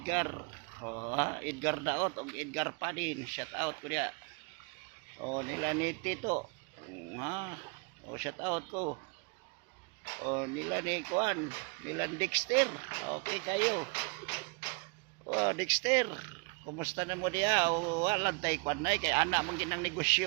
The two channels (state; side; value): quieter; left; 32.4 dB